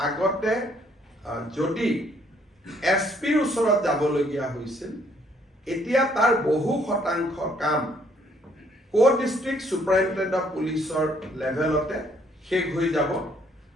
আগতে যদি SPৰ ওচৰত যাবলগীয়া হৈছিল, এতিয়া তাৰ বহু শতাংশ কাম ডিষ্ট্ৰিক্ট সুপাৰিনটেণ্ডেণ্ট অফ পুলিচৰ লেভেলতে শেষ হৈ যাব।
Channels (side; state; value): both; normal; correlation 0.66